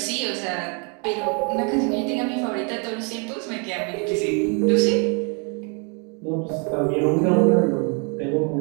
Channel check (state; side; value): quieter; left; 36.3 dB